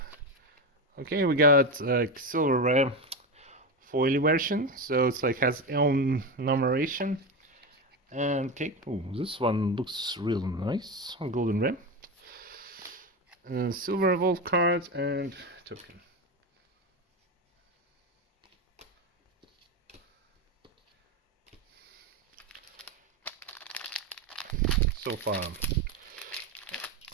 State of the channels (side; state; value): both; normal; correlation 0.16